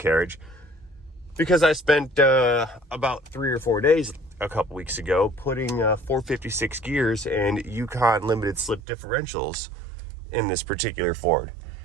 because I spent about 3 or 4 days a couple weeks ago putting 456 gears and Yukon limited slip differentials in this particular Ford.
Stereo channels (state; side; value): drops out; left; at 8.8 s